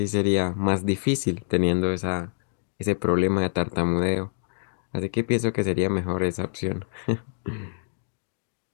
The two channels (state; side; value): silent; right; digital silence